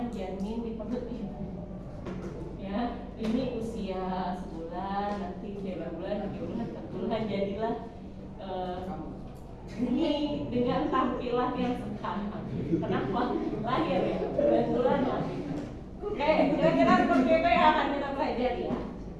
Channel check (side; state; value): both; identical; correlation 1.00